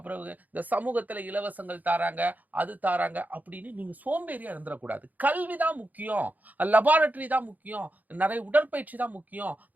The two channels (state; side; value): late; left; 0.081 ms